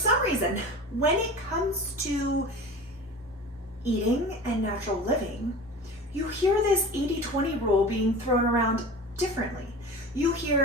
reason, when it comes to eating and natural living, you hear this 80-20 rule being thrown around differently. You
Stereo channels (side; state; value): both; normal; correlation 0.35